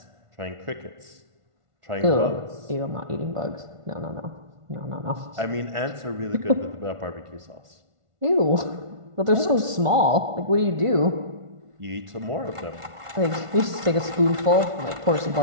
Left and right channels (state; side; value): late; left; 1.5 ms